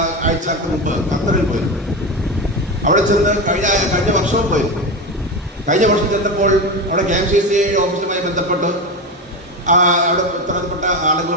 ആഴ്ചക്ക് മുമ്പ് ഖത്തറിൽ പോയിരുന്നു. അവിടെ ചെന്ന് കഴിഞ്ഞ വർഷവും പോയിരുന്നു. കഴിഞ്ഞ വർഷം ചെന്നപ്പോൾ അവിടെ KMCC ഓഫീസുമായി ബന്ധപ്പെട്ട് അവിടെ ഉത്തരവാദപ്പെട്ട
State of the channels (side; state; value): both; normal; correlation 0.19